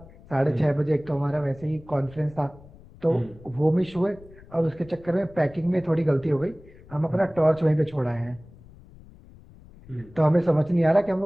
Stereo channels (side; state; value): left; noise; rumble, 22 dB below the sound